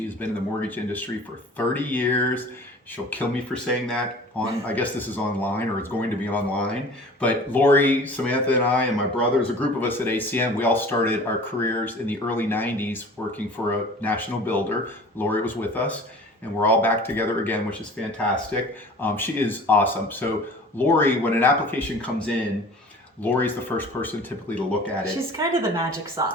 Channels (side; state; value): both; normal; correlation 0.43